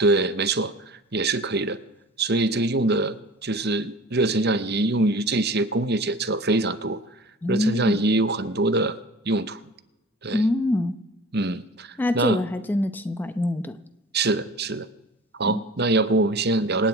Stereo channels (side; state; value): both; normal; correlation 0.41